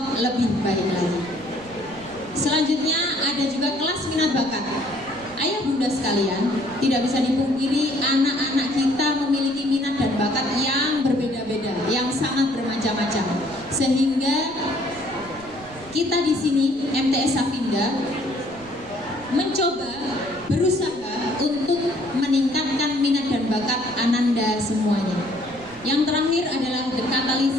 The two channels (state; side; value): noise; right; rumble, 22 dB below the sound